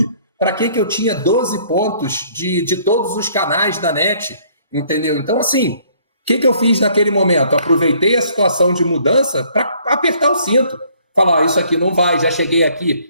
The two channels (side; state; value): both; inverted; correlation -0.61